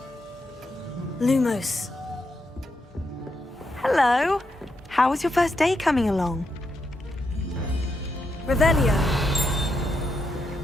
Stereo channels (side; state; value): both; normal; correlation 0.82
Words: Lumos. Hello. How was your first day coming along? Revelio.